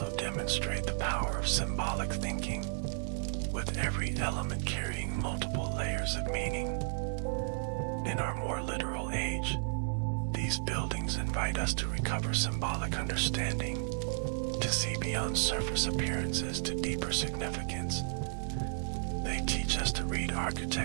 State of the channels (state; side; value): silent; left; digital silence